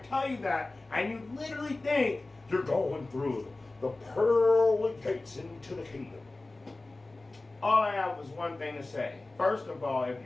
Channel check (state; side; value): quieter; right; 3.1 dB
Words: tell you that, and you literally think you're going through the pearly gates into the kingdom. All I have was one thing to say. First of all, if